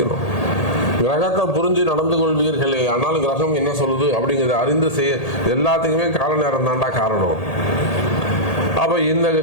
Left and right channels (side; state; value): right; late; 1.8 ms